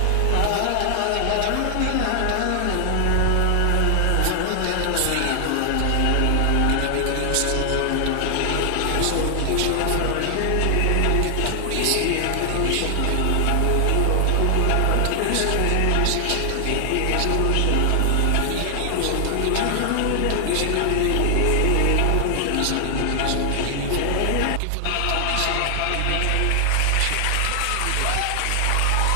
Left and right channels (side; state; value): both; different; correlation 0.00